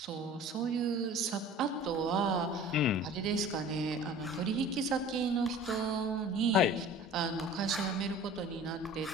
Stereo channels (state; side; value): normal; both; correlation 0.44